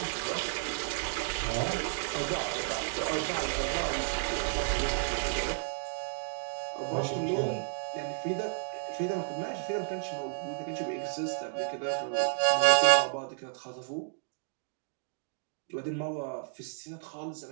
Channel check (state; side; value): silent; left; digital silence